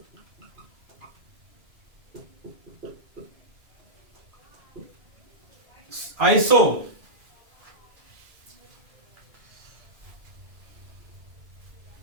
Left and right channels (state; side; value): late; left; 2.3 ms